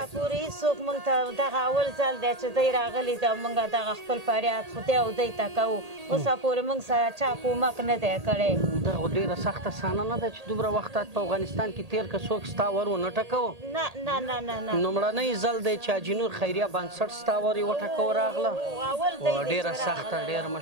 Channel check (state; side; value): late; left; 1.8 ms